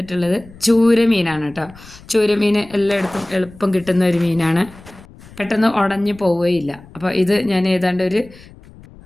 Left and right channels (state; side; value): noise; left; rumble, 21 dB below the sound